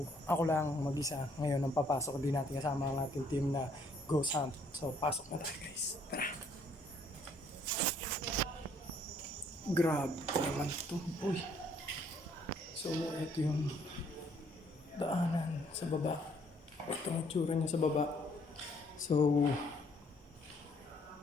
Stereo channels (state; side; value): normal; both; correlation 0.64